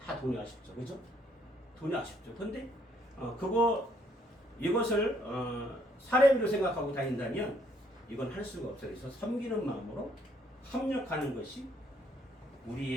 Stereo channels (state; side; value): normal; both; correlation 0.68